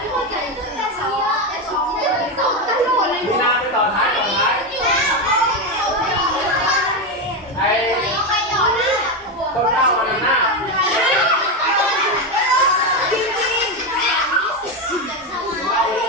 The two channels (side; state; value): both; normal; correlation 0.11